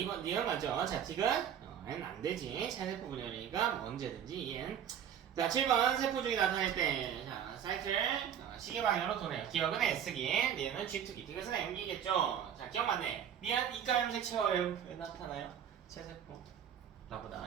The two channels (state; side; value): quieter; left; 9.0 dB